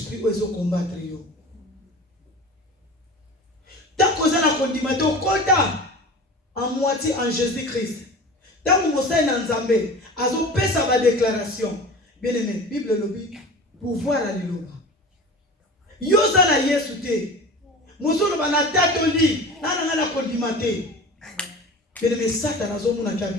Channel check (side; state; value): both; normal; correlation 0.36